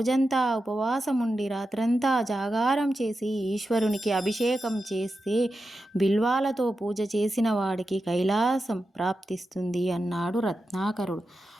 ఉపవాసం ఉండి రాత్రంతా జాగారం చేసి ఈశ్వరునికి అభిషేకం చేస్తే బిల్వాలతో పూజ చేసిన వాడికి కైలాసం ప్రాప్తిస్తుంది అన్నాడు రత్నాకరుడు.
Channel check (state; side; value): normal; both; correlation 0.90